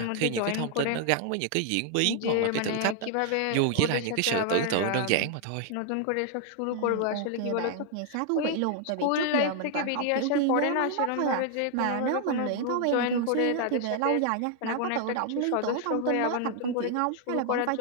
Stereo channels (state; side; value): different; both; correlation 0.00